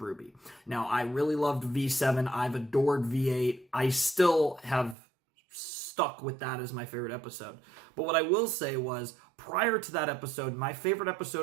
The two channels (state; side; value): drops out; left; at 5.0 s